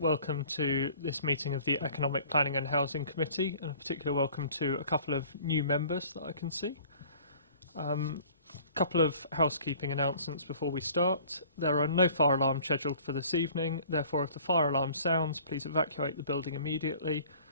to this meeting of the Economic Planning and Housing Committee, and a particular welcome to a couple of new members that I can see. A couple of housekeeping announcements before we start. There are no fire alarms scheduled for this evening, therefore if the fire alarm sounds, please evacuate the building immediately.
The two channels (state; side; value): inverted; both; correlation -0.50